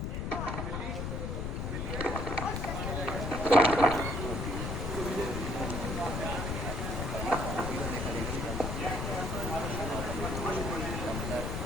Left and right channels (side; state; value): left; noise; rumble, 2 dB below the sound